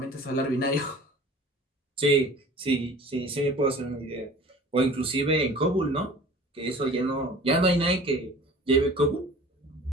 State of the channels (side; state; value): both; normal; correlation 0.44